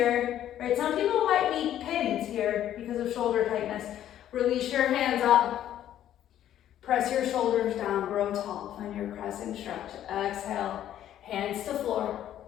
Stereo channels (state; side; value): quieter; right; 11.5 dB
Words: Right, some people might be pinned here because of shoulder tightness. Release your hands up. Press your shoulders down, grow tall. Find your crescent stretch. Exhale, hands to floor.